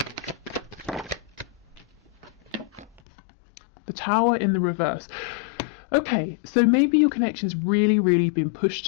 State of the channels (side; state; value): right; drops out; at 3.0 s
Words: The Tower in the reverse. Okay, so maybe your connection's really been pushed